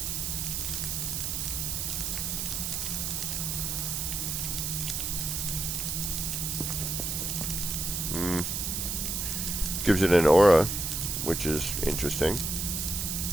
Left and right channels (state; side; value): noise; right; hiss, 1 dB below the sound